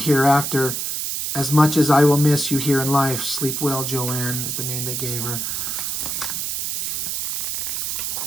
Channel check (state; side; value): noise; right; hiss, 2 dB below the sound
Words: as much as I will miss you here in life. Sleep well, Joanne is the name they gave her.